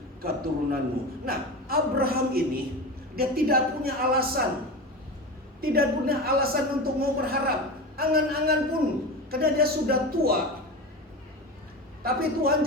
keturunanmu. Nah, Abraham ini dia tidak punya alasan, untuk mau berharap, angan-angan pun, karena dia sudah tua. Tapi Tuhan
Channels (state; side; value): normal; both; correlation 0.26